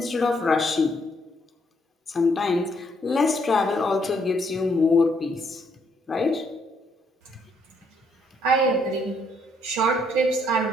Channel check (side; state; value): both; normal; correlation 0.71